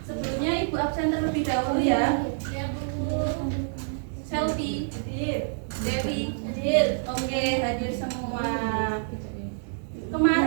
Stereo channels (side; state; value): left; silent; digital silence